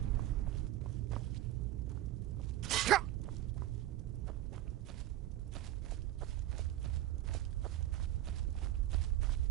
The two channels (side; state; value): left; quieter; 14.5 dB